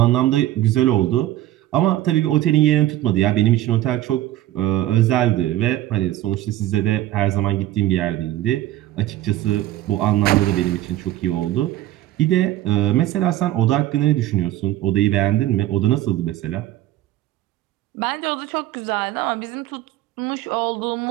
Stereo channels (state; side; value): quieter; left; 14.4 dB